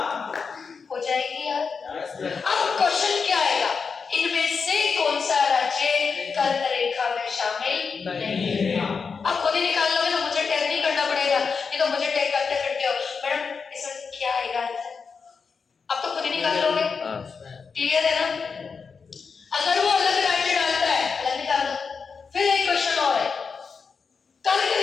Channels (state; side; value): quieter; right; 5.4 dB